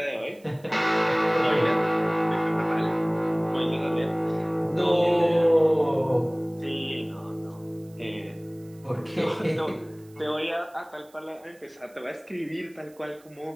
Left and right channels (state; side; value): noise; right; hiss, 29 dB below the sound